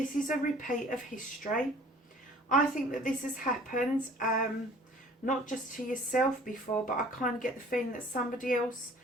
is a repeat of history. I think that this has happened, not just to yourself before, but I kind of get the feeling that somebody else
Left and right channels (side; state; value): both; normal; correlation 0.51